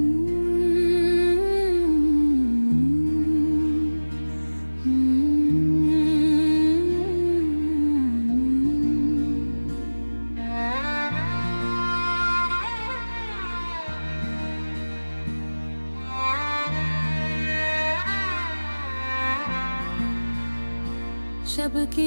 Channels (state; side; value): inverted; both; correlation -1.00